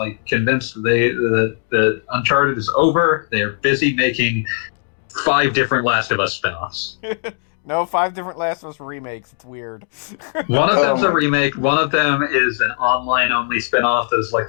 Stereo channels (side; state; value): right; silent; 66 dB below the other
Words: convinced that Uncharted is over. They're busy making 5 different Last of Us spin-offs. No, 5 different Last of Us remakes. It's weird. One of them's a remake. One of them is an online-only spin-off that is like